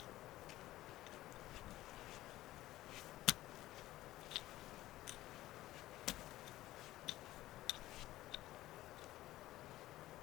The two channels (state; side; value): quieter; right; 15.8 dB